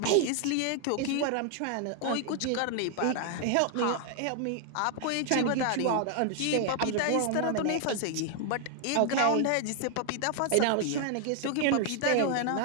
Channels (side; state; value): both; different; correlation 0.00